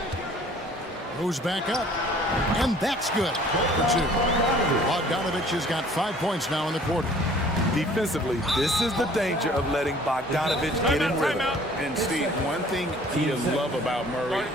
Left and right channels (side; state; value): both; normal; correlation 0.53